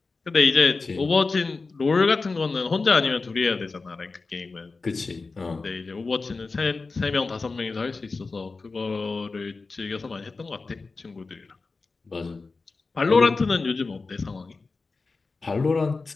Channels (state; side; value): quieter; right; 4.0 dB